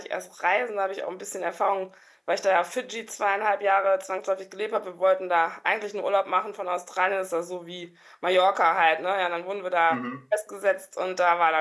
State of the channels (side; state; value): both; identical; correlation 1.00